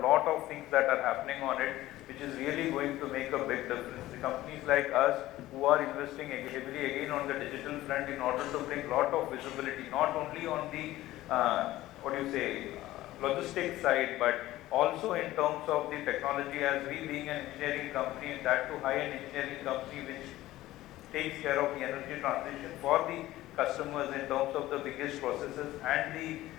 lot of things that are happening on it, which is really going to make a big difference. The companies like us who are investing heavily again on the digital front in order to bring a lot of visibility, not only on the logistics side, but also in terms of the technology, as we being an engineering company, and that too high-end engineering company which takes care of the energy transition for the customers in terms of the biggest processes and the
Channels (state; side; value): quieter; right; 16.0 dB